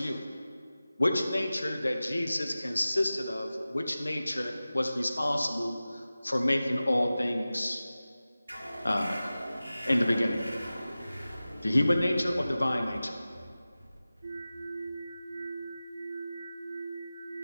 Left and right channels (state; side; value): inverted; both; correlation -0.96